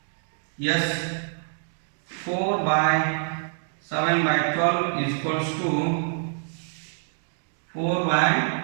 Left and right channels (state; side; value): silent; left; digital silence